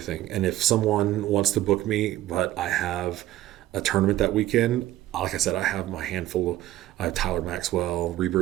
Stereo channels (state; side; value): quieter; left; 14.5 dB